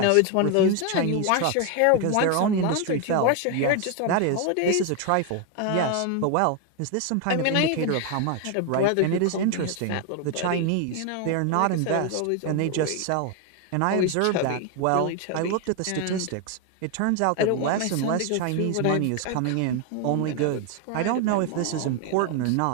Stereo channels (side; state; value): both; different; correlation 0.01